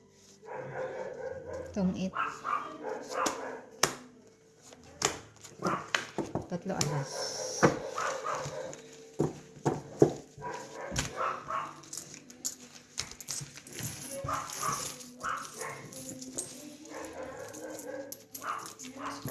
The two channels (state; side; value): identical; both; correlation 1.00